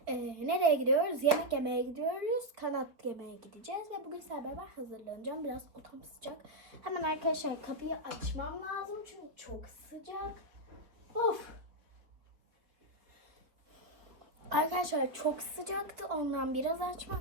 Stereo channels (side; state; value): left; late; 4.3 ms